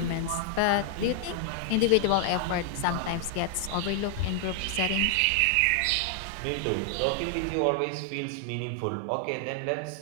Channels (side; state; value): both; different; correlation 0.00